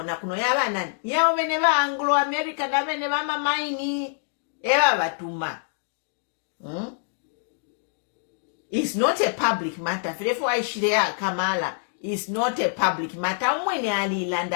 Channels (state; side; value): silent; right; digital silence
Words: kuno yaba nani. Ya weneva Anglo-American, na weneva mamaini. Eba batuma. It's not a public matter. Therefore, I share Kamala. It's not a public matter. Umwene ali